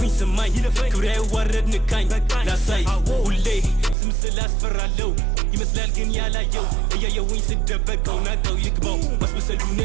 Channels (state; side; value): drops out; left; at 4.0 s